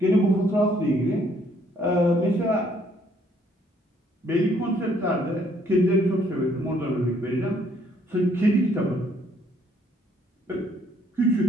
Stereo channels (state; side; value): normal; both; correlation 0.66